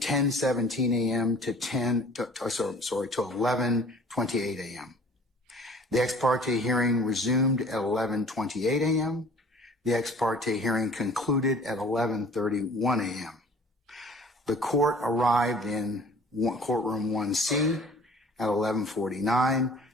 a.m. to 11:28 a.m. The ex parte hearing resumed at 11:28 a.m. The ex parte hearing concluded at 11:31 a.m. The court arrived in courtroom 1C at 11:49.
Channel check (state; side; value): normal; both; correlation 0.49